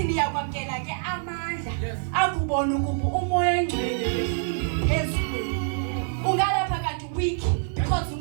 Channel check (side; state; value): left; silent; 57 dB below the other